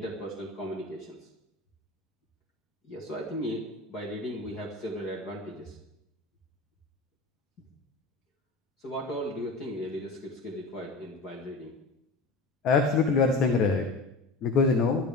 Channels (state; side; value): quieter; right; 3.4 dB